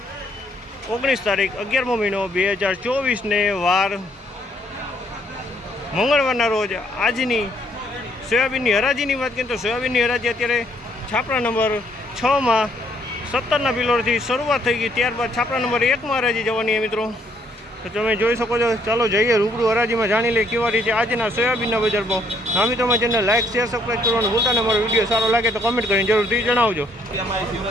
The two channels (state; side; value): normal; both; correlation 0.68